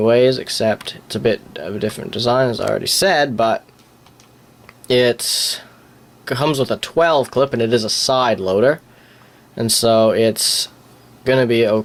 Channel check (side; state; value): both; identical; correlation 1.00